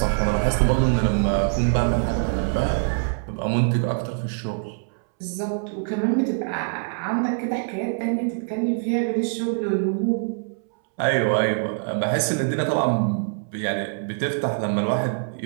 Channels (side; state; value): left; silent; 63 dB below the other